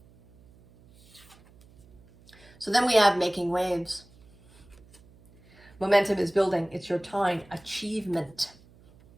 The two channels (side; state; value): right; noise; hum, 26 dB below the sound